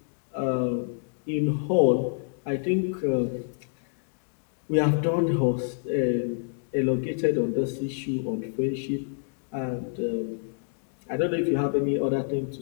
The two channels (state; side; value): silent; right; digital silence